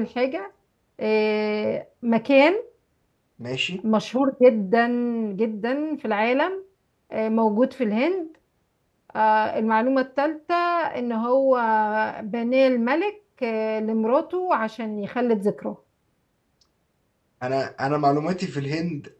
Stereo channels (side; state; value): both; identical; correlation 1.00